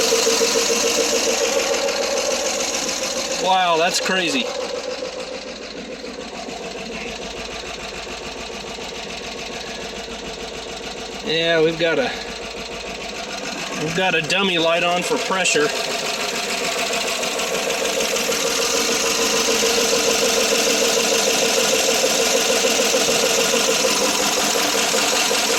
Wow, that's crazy. Yeah, we've got a dummy light on for pressure.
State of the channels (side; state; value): both; identical; correlation 1.00